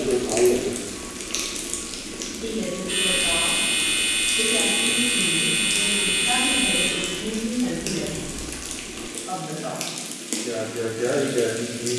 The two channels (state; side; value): identical; both; correlation 1.00